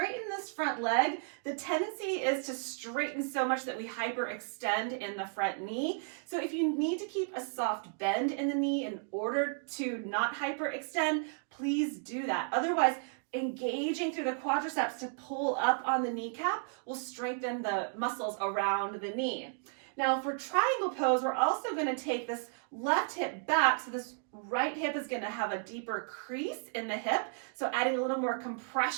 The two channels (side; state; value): left; silent; 55 dB below the other